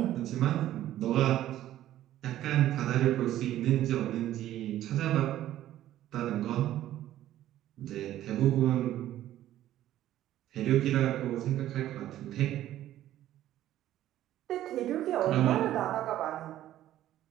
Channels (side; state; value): left; quieter; 13.2 dB